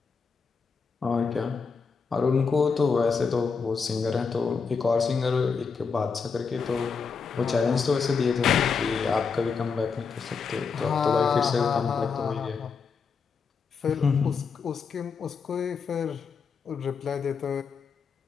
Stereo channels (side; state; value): right; quieter; 5.4 dB